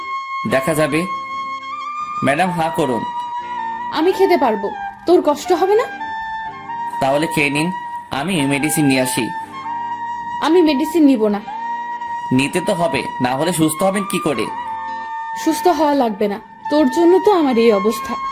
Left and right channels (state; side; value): identical; both; correlation 1.00